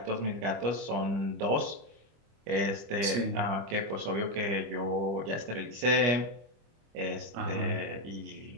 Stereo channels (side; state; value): left; late; 25 ms